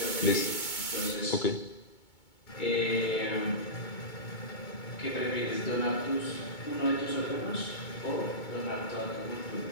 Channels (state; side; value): late; right; 2.2 ms